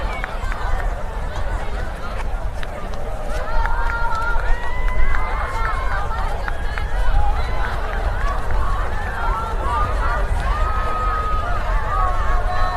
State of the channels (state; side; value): identical; both; correlation 1.00